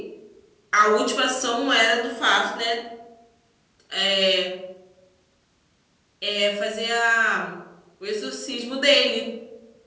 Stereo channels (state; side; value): identical; both; correlation 1.00